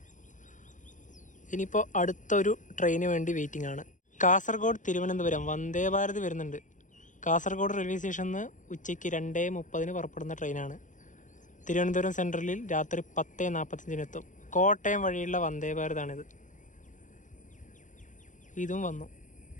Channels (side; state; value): right; late; 0.37 ms